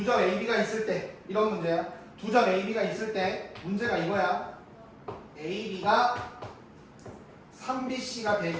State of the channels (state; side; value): identical; both; correlation 1.00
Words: 점 AB가 있을 때. 이런 문제야. 두 점 AB가 있을 때. 문제가 이거야. AB가 3BC가